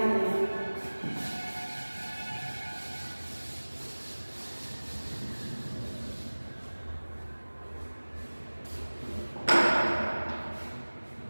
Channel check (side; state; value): both; inverted; correlation -1.00